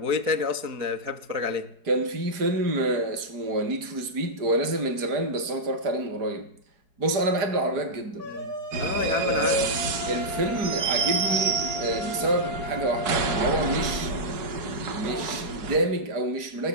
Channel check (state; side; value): late; left; 4.7 ms